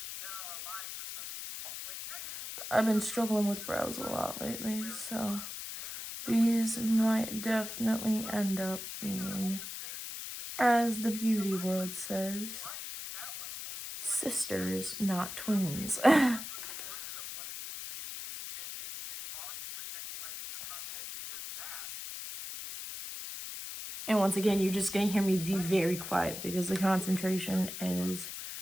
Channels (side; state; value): left; noise; hiss, 8 dB below the sound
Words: I've been struggling with brows a lot lately, so these might definitely end up being, as the beauty world says, sisters, not twins. And once again, you're just gonna hear me be very quiet because the concentration is